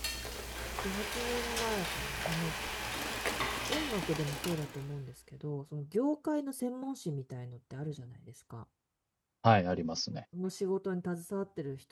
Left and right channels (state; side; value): identical; both; correlation 1.00